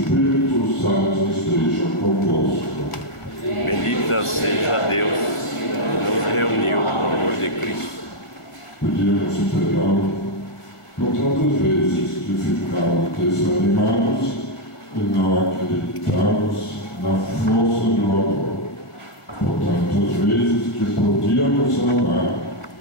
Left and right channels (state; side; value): late; right; 1.6 ms